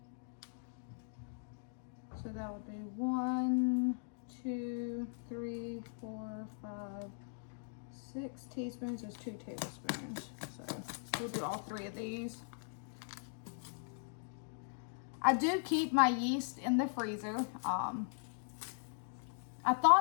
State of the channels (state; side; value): silent; right; digital silence